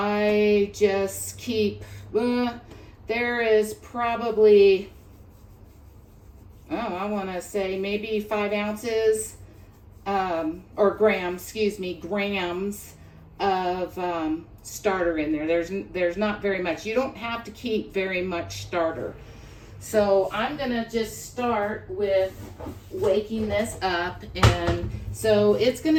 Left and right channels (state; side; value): identical; both; correlation 1.00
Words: just keep, there is probably, I want to say maybe 5 ounces or grams of starter in there. There's not very much. You don't have to keep very much starter. So I'm gonna just start with waking this up, and so it's